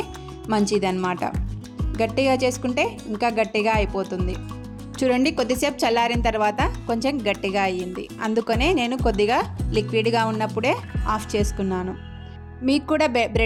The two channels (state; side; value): identical; both; correlation 1.00